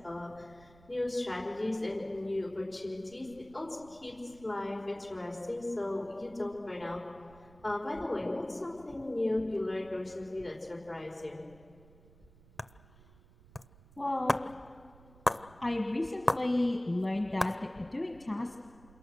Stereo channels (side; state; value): right; noise; rumble, 23 dB below the sound